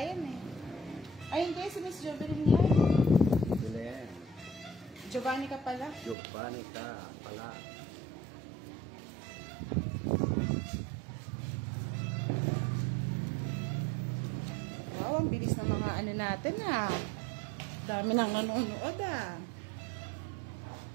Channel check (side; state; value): left; drops out; at 6.2 s